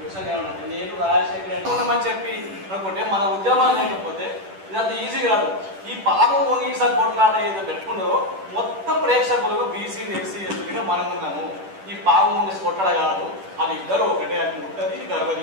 ఏమన్నా నేను రాజశేఖర్ ఉన్నామని చెప్పి అనుకుంటే మన ఉద్యమాలు లేకపోతే ఇదంతా ఈజీ కాదు. ఈ పాపం మొంగీసా కొట్లాట ఏదో పెట్టుకున్నారో మొత్తం ప్రేక్షకులకు బీసీలు ఎస్సీ ఎస్టీలుగా మనం ఉన్నాము. ఈ పాపం మొంగీసి కొట్లాడ కాదు, అది ఇద్దరు ఒకటే, అది ముట్టది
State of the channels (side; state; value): left; late; 10 ms